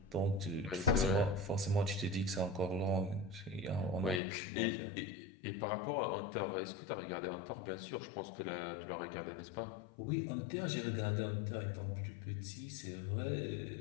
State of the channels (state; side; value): drops out; right; at 4.2 s